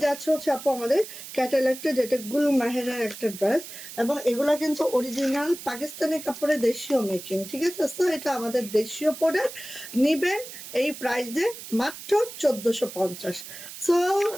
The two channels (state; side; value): noise; right; hiss, 12 dB below the sound